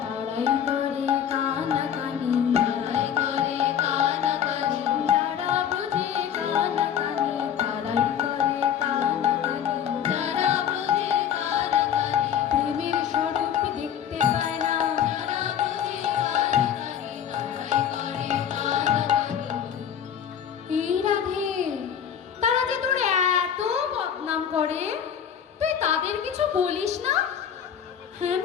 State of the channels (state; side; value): quieter; right; 8.8 dB